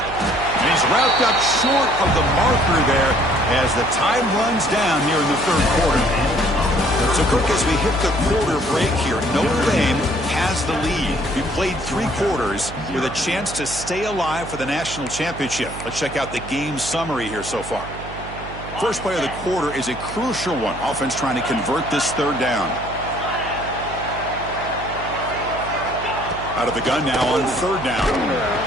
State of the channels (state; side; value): noise; right; hum, 12 dB below the sound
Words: he's wrapped up short of the marker there as the time runs down here in the 3rd quarter. So, Kirk, as we hit the quarter break here, Notre Dame has the lead. We played 3 quarters with a chance to stay alive for the national championship. Let's check out the game summary here so far. First play of the quarter is a crucial one. Offense trying to convert this 3rd down. Out of the gun now on 3rd down.